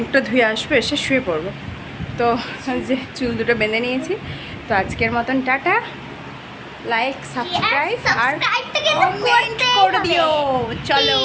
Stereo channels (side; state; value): both; identical; correlation 1.00